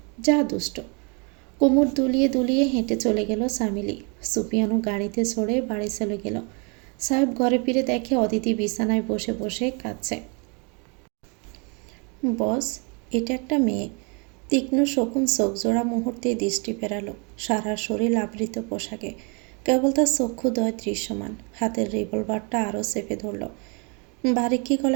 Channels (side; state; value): left; quieter; 33.6 dB